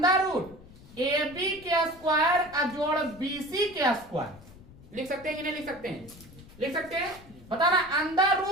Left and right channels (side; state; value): left; noise; rumble, 21 dB below the sound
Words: रूट AB के स्क्वायर जोड़ BC के स्क्वायर, लिख सकते हैं कि नहीं लिख सकते हैं? लिख सकते हैं। बताना अंडर